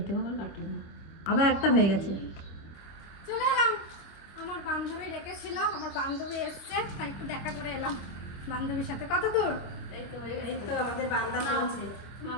আমার কাটলো, আবার একটা হয়ে গেছে। চলে এলাম, আমার বান্ধবী ডেকেছিল, আমার বান্ধবী এসছে, তাই একটু দেখা করে এলাম বান্ধবীর সাথে। কত দূর? এই তো আমাদের বান্দা চলছে।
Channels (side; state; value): right; late; 25 ms